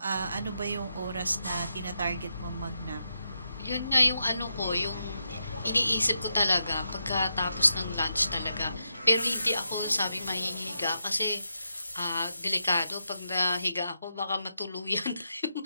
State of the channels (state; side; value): inverted; both; correlation -0.84